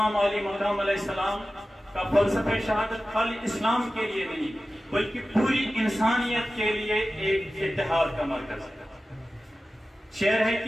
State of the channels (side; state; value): both; normal; correlation 0.95